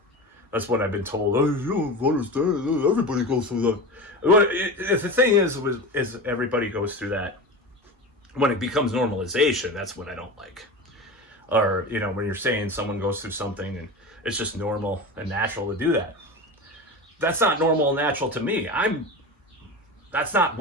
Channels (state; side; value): normal; both; correlation 0.27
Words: that's what I've been told. Oh, you don't understand. Everybody goes through that. If the thing is everybody goes through that. When it becomes normalization, that's what I don't like. Or, you know, when you're saying someone goes through something and it's just normal and natural to do that. That's not normal and natural to me. That's not